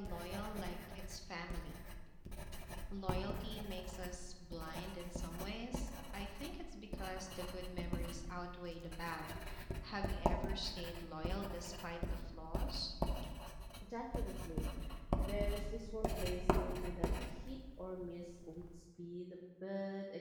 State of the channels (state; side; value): identical; both; correlation 1.00